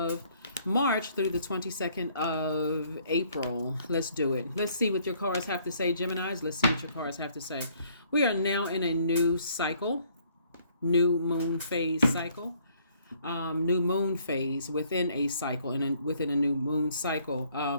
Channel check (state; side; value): inverted; both; correlation -0.64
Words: March through the 22nd of April. Let's do it. Let's see what your cards have to say, Geminis. Let's see what your cards have to say. We are now in a new cycle, new moon phase cycle. New moon phase within a cycle and within a new moon cycle,